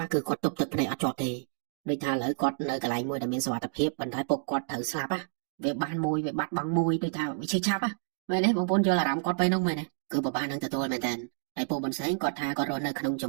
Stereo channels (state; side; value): silent; left; digital silence